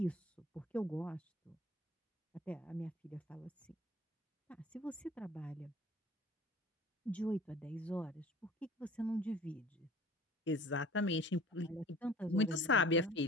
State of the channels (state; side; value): normal; both; correlation 0.47